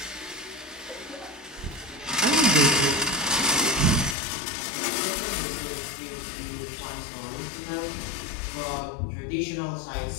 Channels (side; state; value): right; drops out; at 4.2 s